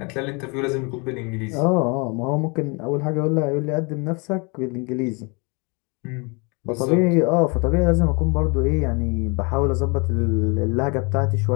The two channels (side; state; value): right; quieter; 30.8 dB